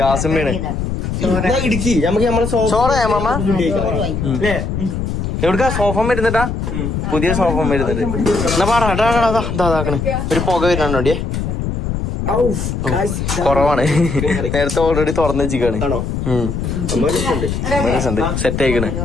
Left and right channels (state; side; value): noise; left; rumble, 2 dB below the sound